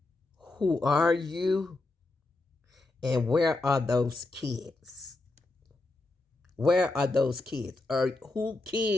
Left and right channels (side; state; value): right; quieter; 3.1 dB